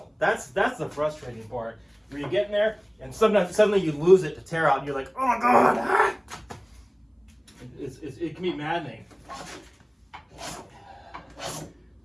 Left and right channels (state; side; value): identical; both; correlation 1.00